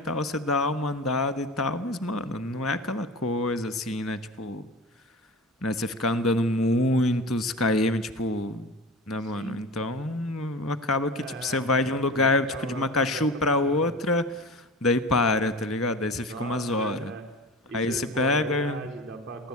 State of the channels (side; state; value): both; normal; correlation 0.33